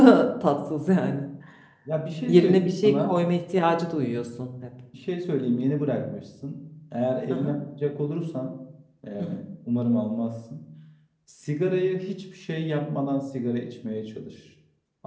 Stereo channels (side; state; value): both; identical; correlation 1.00